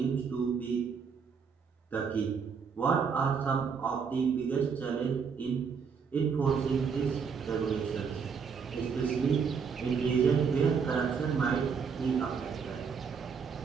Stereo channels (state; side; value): quieter; left; 6.1 dB